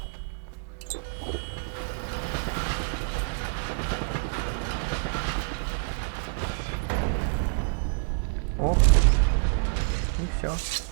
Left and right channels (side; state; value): left; silent; digital silence